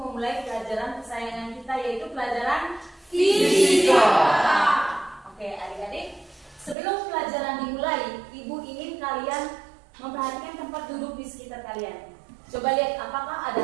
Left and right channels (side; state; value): left; drops out; at 6.8 s